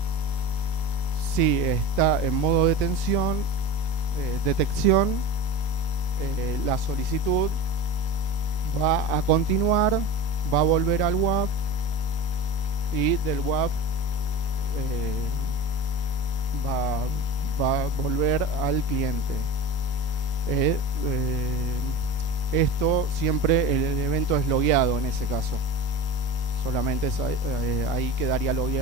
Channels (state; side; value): late; right; 19 ms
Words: Si está en modo detección, la solicitud va a continuar, va a volver al WAF y del WAF va a volver al cliente. Esto siempre el evento es logueado en ese caso. Solamente ahí quedaría